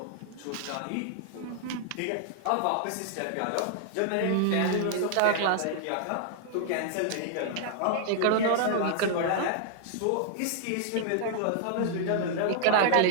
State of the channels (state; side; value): different; both; correlation 0.00